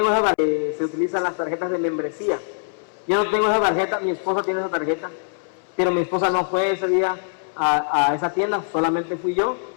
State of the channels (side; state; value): right; silent; 64 dB below the other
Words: esa tarjeta, se utilizan las tarjetas de membresía. Yo no tengo esa tarjeta, mi esposa tiene esa tarjeta, pero mi esposa no fue ese día a esa tienda, solamente fui yo.